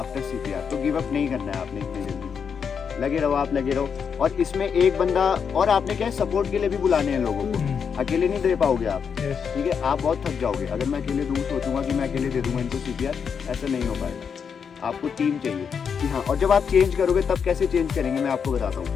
CPR, तो गिव अप नहीं करना है आपने इतनी जल्दी, लगे रहो, आप लगे रहो। और इसमें एक बंदा और आपने क्या है, सपोर्ट के लिए भी बुलाने हैं लोगों को, अकेले नहीं दे पाओगे आप, ठीक है। आप बहुत थक जाओगे, अगर मैं अकेले दूँ, सोचूंगा कि मैं अकेले दे दूंगा इनको CPR, ऐसा नहीं हो पाएगा, आपको टीम चाहिए कि हाँ। और जब आप चेंज करोगे, तब कैसे चेंज करेंगे मैं आपको बताता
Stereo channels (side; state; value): right; quieter; 6.7 dB